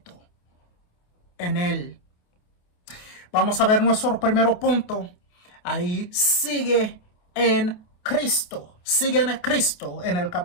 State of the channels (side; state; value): right; late; 28 ms